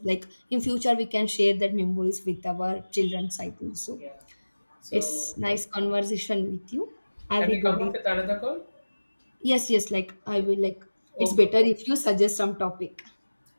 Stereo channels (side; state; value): both; inverted; correlation -1.00